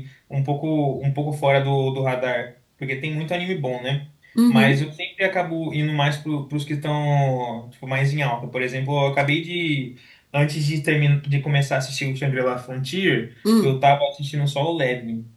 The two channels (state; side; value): identical; both; correlation 1.00